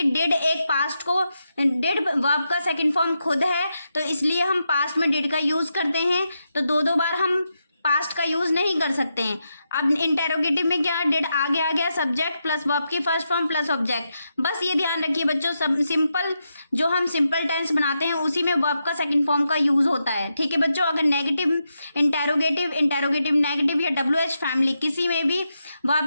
डिड एक पास्ट को, डिड वर्ब का सेकंड फॉर्म खुद है, तो इसलिए हम पास्ट में डिड का यूज करते हैं। तो दो बार हम पास्ट का यूज नहीं कर सकते हैं। अब इंटेरोगेटिव में क्या, डिड आगे आ गया, सब्जेक्ट प्लस वर्ब की फर्स्ट फॉर्म प्लस ऑब्जेक्ट। बस ये ध्यान रखिए बच्चों, सब सिंपल जो हम सिंपल टेंस बनाते हैं उसी में वर्ब का सेकंड फॉर्म का यूज होता है। ठीक है बच्चों, अगर नेगेटिव इंटेरोगेटिव नेगेटिव या WH फैमिली किसी में भी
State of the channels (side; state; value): both; inverted; correlation -0.85